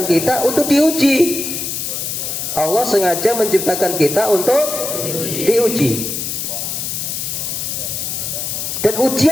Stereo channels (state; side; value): noise; left; hiss, 3 dB below the sound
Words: kita untuk diuji. Allah sengaja menciptakan kita untuk diuji. Dan